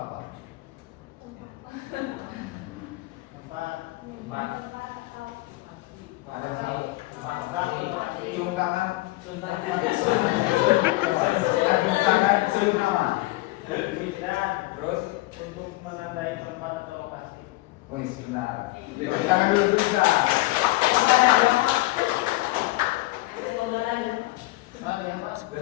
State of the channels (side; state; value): right; quieter; 20.0 dB